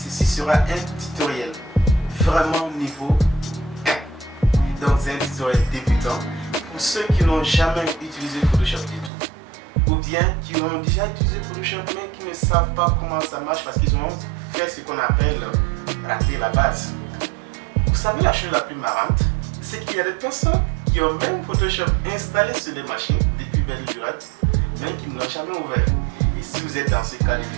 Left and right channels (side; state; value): left; drops out; at 9.1 s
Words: sera un tutoriel vraiment niveau 1. Donc c'est un tutoriel débutant pour ceux qui n'ont jamais utilisé Photoshop du tout. Ou bien qui ont déjà utilisé Photoshop mais qui ne savent pas comment ça marche parce qu'ils ont fait ce qu'on appelle rater la base. Vous savez la chose la plus marrante, c'est qu'il y a des personnes qui ont même Photoshop installé sur les machines depuis belle lurette, mais qui ne l'ont jamais ouvert. Et si vous êtes dans ce cas de